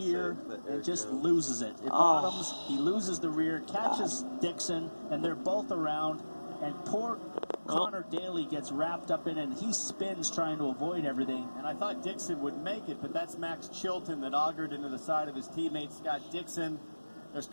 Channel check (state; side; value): inverted; both; correlation -1.00